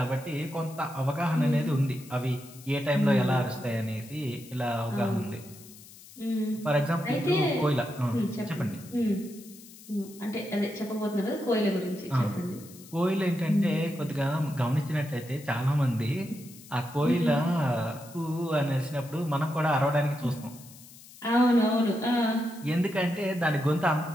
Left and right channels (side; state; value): left; noise; hiss, 20 dB below the sound